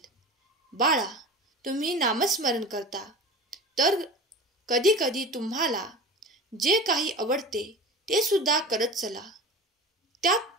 बाळा, तुम्ही नामस्मरण करता तर कधी कधी तुम्हाला जे काही आवडते ते सुद्धा करत चला. त्यात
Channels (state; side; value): normal; both; correlation 0.34